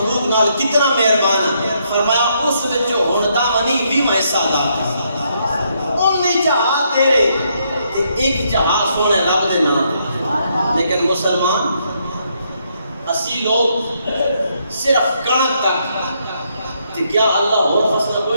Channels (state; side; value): inverted; both; correlation -0.75